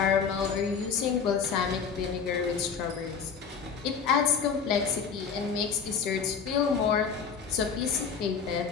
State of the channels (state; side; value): quieter; right; 6.3 dB